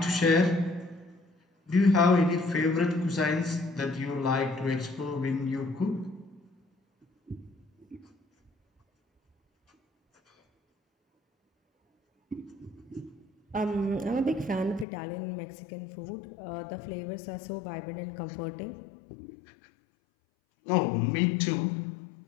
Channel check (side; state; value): right; drops out; at 14.9 s